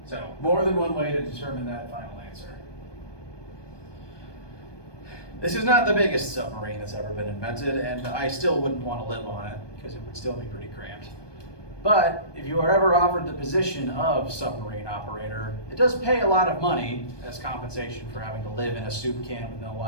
So more than one way to determine that final answer. This is not the biggest submarine that's ever been invented, and I still wouldn't want to live on it because it would still be pretty cramped. But if you are ever offered the position of submarine operator, it does pay a lot of money as compensation for having to live in a soup can with no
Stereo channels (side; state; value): right; late; 1.2 ms